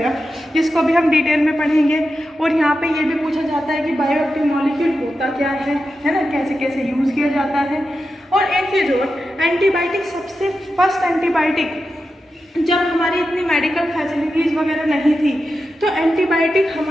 जिसको भी हम डिटेल में पढ़ेंगे. और यहाँ पे ये भी पूछा जाता है कि बायोएक्टिव मॉलिक्यूल होता क्या है ना, कैसे कैसे यूज़ किया जाता है. और एक चीज़ और, एंटीबायोटिक सबसे फर्स्ट एंटीबायोटिक, जब हमारी इतनी मेडिकल फैसिलिटीज़ वगैरह नहीं थी तो एंटीबायोटिक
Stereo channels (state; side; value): normal; both; correlation 0.90